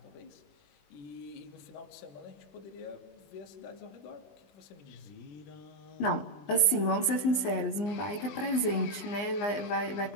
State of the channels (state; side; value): late; right; 19 ms